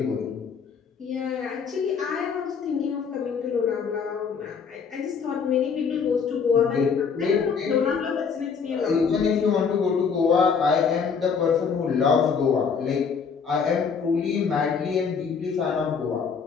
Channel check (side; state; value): right; quieter; 6.0 dB